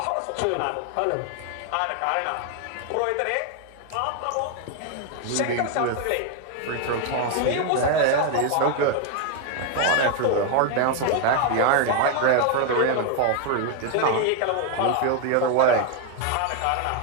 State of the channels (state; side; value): different; both; correlation 0.01